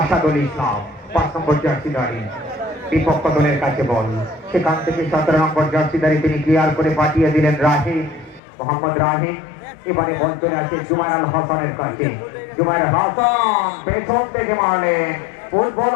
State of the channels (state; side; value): drops out; right; at 8.4 s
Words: ইসলাম। 5 নম্বর জার্সিধারী বিপক্ষ দলের কাছে বল, সেখান থেকে 17 নম্বর জার্সিধারী তিনি ক্লিয়ার করে পাঠিয়ে দিলেন রাহিম, মোহাম্মদ রাহিম। এবারে বল চলে আসে জুবাইর আল হাসানের কাছে। জুবাইর হাসান পেছন থেকে মারলেন, ফুটবল।